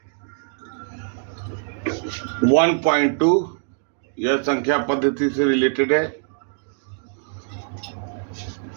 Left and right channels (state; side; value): silent; left; 63 dB below the other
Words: 1.2 यह संख्या पद्धति से रिलेटेड है